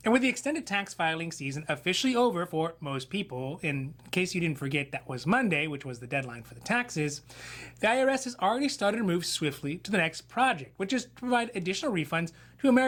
And with the extended tax filing season officially over for most people, in case you didn't forget that was Monday, which was the deadline for the taxes, the IRS has already started to move swiftly to the next project, which is to provide additional refunds to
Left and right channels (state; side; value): identical; both; correlation 1.00